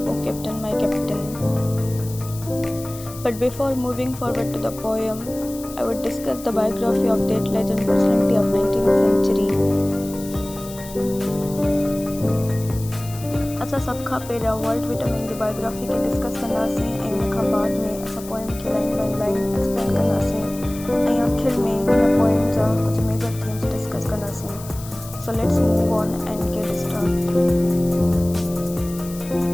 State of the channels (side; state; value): left; noise; hiss, 16 dB below the sound